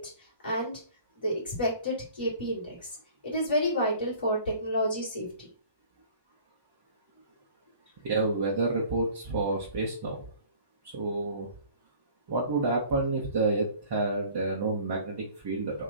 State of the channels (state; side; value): inverted; both; correlation -0.49